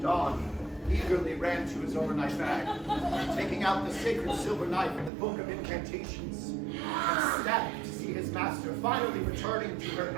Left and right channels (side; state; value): left; drops out; at 5.1 s